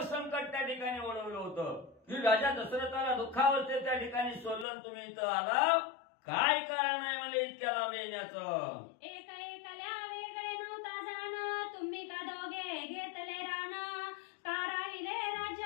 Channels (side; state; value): right; drops out; at 4.7 s